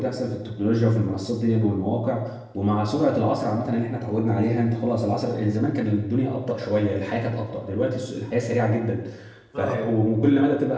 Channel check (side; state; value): both; identical; correlation 1.00